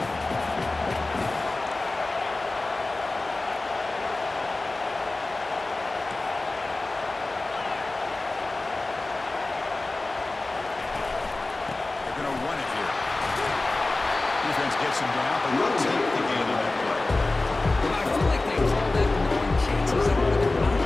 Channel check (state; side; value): quieter; right; 3.1 dB